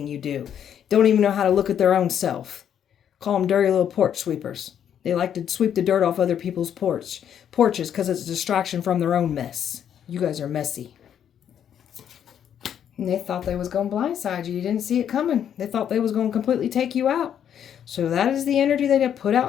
you do. Don't even know how to look at their own self. Call them dirty little porch sweepers. They like to sweep the dirt off other people's porches because it's a distraction from their own mess. You guys are messy. And they thought they was going to blindside you. You didn't see it coming. They thought they was going to completely take you out. So that is the energy they have put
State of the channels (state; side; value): quieter; right; 9.2 dB